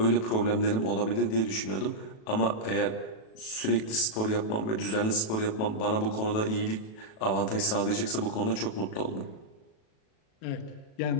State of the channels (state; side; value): late; right; 37 ms